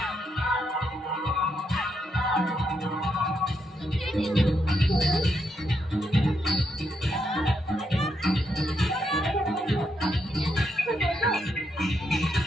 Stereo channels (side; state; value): both; normal; correlation 0.79